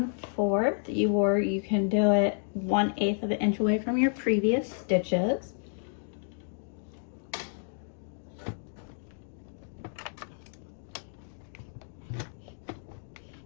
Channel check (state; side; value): silent; right; digital silence